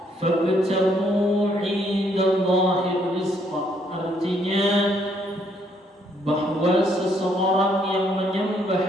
fabtaghu 'indallahi rizqa. Artinya bahwa seseorang yang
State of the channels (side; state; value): both; normal; correlation 0.69